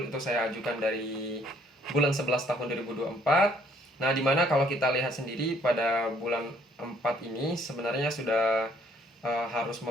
itu saya ajukan dari bulan 11 tahun 2024. Nah, di mana kalau kita lihat sendiri pada bulan 4 ini sebenarnya sudah harus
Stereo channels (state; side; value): normal; both; correlation 0.64